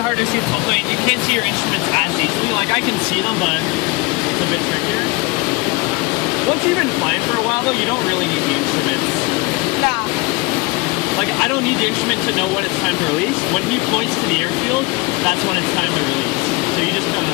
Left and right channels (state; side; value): quieter; right; 24.9 dB